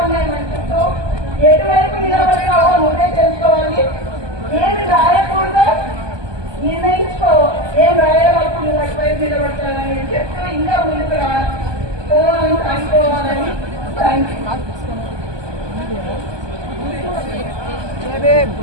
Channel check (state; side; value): late; left; 1.2 ms